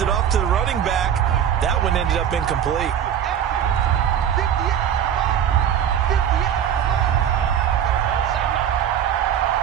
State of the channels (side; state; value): left; quieter; 9.2 dB